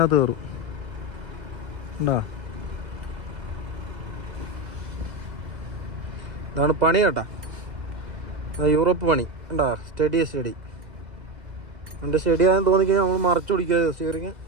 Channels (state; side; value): late; left; 2.0 ms